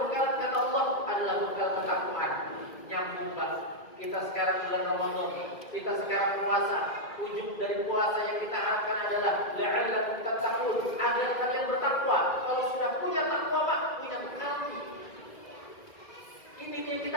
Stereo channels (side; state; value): right; late; 2.0 ms